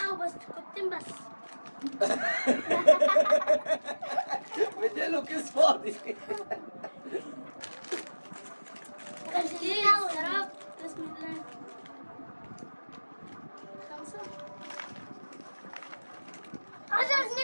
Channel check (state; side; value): inverted; both; correlation -1.00